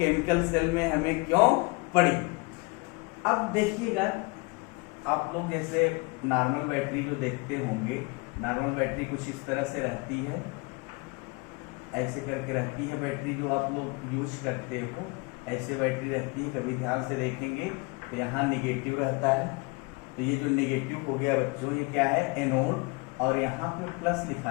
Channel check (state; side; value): quieter; right; 27.9 dB